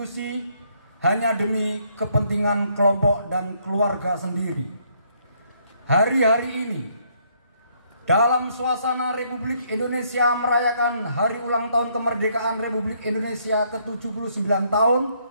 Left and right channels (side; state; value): both; inverted; correlation -0.69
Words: hanya demi kepentingan kelompok dan keluarga sendiri. Hari-hari ini, dalam suasana Republik Indonesia merayakan hari ulang tahun kemerdekaan Republik Indonesia ke-79